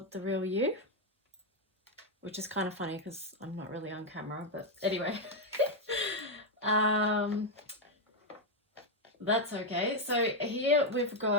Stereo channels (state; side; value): normal; both; correlation 0.02